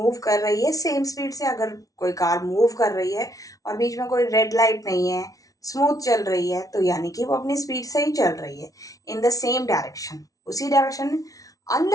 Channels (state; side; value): late; right; 0.18 ms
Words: कर रही है सेम स्पीड से। अगर कोई कार मूव कर रही है और बीच में कोई रेड लाइट नहीं है, स्मूथ चल रही है, तो यानी कि वो अपनी स्पीड से ही चल रही है, इन द सेम डायरेक्शन, उसी डायरेक्शन में,